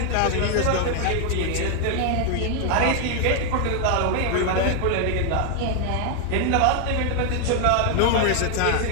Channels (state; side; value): different; both; correlation 0.00